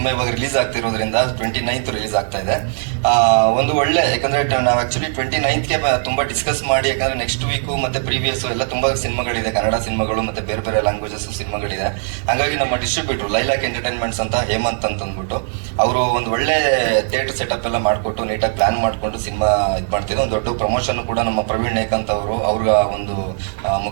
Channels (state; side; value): silent; left; digital silence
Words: ಇವಾಗ ರಿಲೀಸ್ ಆಗ್ತಿರೋದ್ರಿಂದ 29th ರಿಲೀಸ್ ಆಗ್ತಾ ಇದೆ. ಒಂದು ಒಳ್ಳೆ, ಯಾಕಂದ್ರೆ ನಾವು ಆಕ್ಚುಲಿ 29th ತುಂಬಾ ಡಿಸ್ಕಸ್ ಮಾಡಿ, ಯಾಕಂದ್ರೆ ನೆಕ್ಸ್ಟ್ ವೀಕ್ ಮತ್ತೆ ಪ್ರೀವಿಯಸ್ ಎಲ್ಲ ತುಂಬಾ ಸಿನಿಮಾಗಳಿದೆ, ಕನ್ನಡ ಸಿನಿಮಾಗಳು ಮತ್ತೆ ಬೇರೆ ಬೇರೆ ಲ್ಯಾಂಗ್ವೇಜಸ್ ಸಿನಿಮಾಗಳಿದೆ. ಹಾಗಾಗಿ ನಮ್ಮ ಡಿಸ್ಟ್ರಿಬ್ಯೂಟರ್ ಲೈಲಾಕ್ ಎಂಟರ್ಟೈನ್ಮೆಂಟ್ಸ್ ಅಂತ ಹೇಮಂತ್ ಅಂತ ಅಂದ್ಬಿಟ್ಟು ಅವರು ಒಂದು ಒಳ್ಳೆ ಥಿಯೇಟರ್ ಸೆಟಪ್ ಎಲ್ಲ ಮಾಡ್ಕೊಟ್ಟು ನೀಟಾಗಿ ಪ್ಲಾನ್ ಮಾಡ್ಕೊಂಡು ಸಿನಿಮಾ ಇದು ಮಾಡ್ತಿದ್ರು. ಒಂದು ದೊಡ್ಡ ಪ್ರಮೋಷನ್ ಕೂಡ ನಮ್ಮ ಪ್ರವೀಣ್ ನೇಕಾಂತ್ ಅವರು ಅವ್ರ ಒಂದು